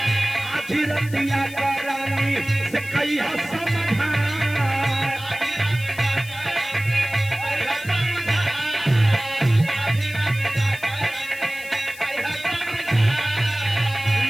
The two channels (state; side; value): noise; left; hiss, 18 dB below the sound